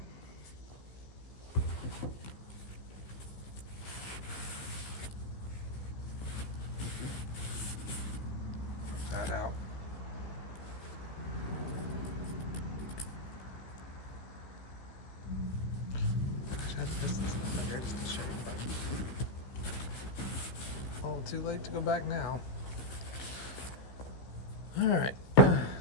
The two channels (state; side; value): late; right; 15 ms